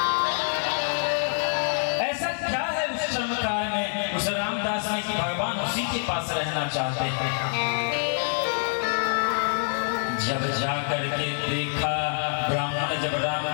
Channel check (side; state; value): right; silent; 61 dB below the other